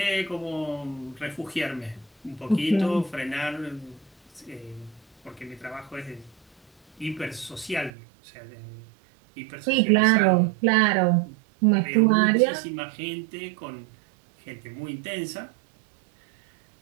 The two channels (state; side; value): drops out; left; at 7.9 s